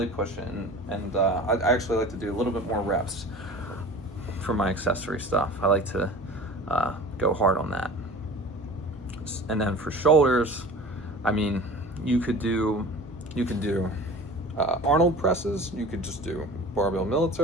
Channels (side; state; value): both; normal; correlation 0.39